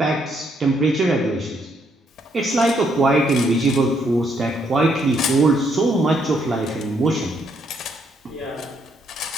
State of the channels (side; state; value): both; normal; correlation 0.72